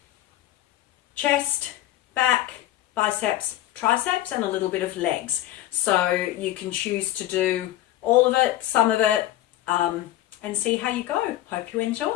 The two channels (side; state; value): right; quieter; 14.5 dB